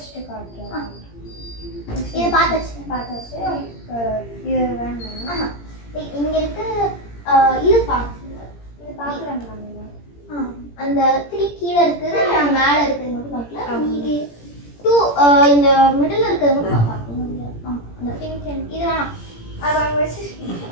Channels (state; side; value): late; right; 17 ms